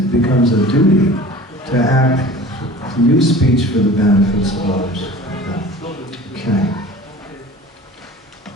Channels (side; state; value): both; normal; correlation 0.41